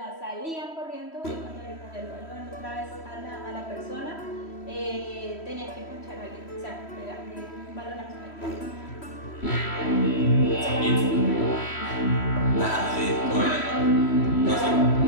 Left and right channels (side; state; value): right; late; 3.1 ms